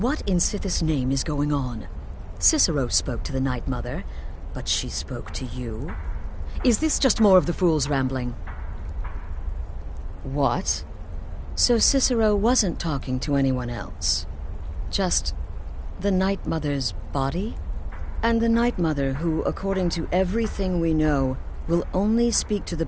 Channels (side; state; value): both; identical; correlation 1.00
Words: what in Sithis' name is going on? Cicero spoke to the Night Mother, but she spoke to you? Is this just more of the fool's rambling? What? So Cicero wasn't talking to anyone else? Just the Night Mother's body? And the Night Mother, who, according to everything we know, will only speak to the